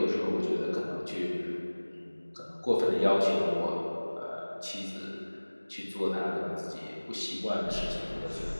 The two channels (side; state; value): both; inverted; correlation -1.00